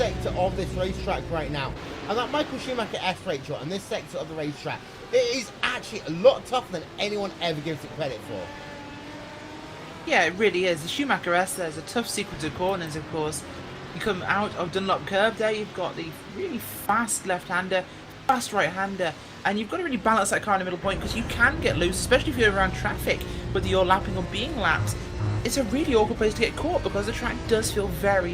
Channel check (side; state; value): both; identical; correlation 1.00